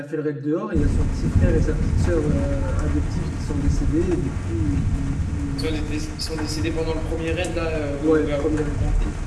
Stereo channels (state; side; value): identical; both; correlation 1.00